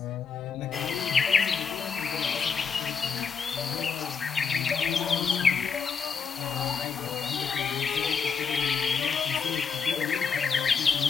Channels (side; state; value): right; quieter; 5.9 dB